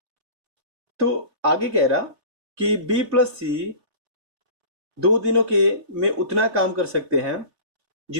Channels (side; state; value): left; late; 3.4 ms